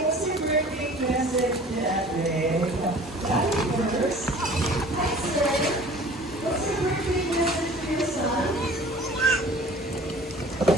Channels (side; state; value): both; normal; correlation 0.47